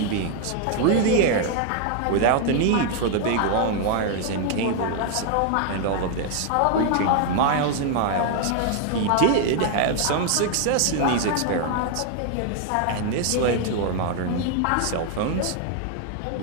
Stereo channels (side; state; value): both; different; correlation 0.00